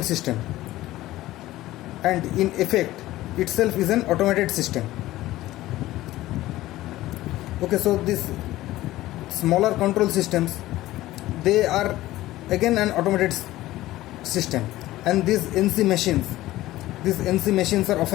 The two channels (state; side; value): quieter; right; 16.3 dB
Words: system. And in effect, itself is an automated system. Okay, so these smaller control systems, they are again an automated system. And these NC machines are